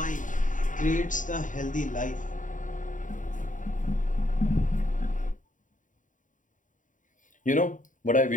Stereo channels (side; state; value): right; late; 0.37 ms